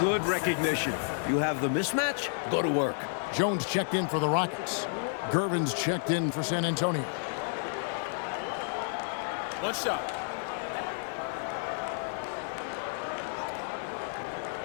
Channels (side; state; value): right; silent; digital silence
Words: recognition. You have the mismatch, go to work. Jones checked in for the Rockets. Gervin's checked in for San Antonio. One shot.